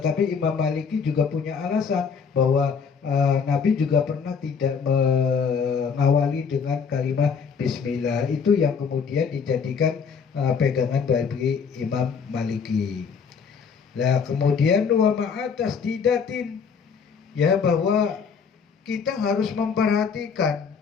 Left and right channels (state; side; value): quieter; right; 6.1 dB